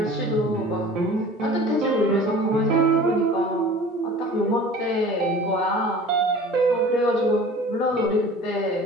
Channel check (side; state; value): both; normal; correlation 0.43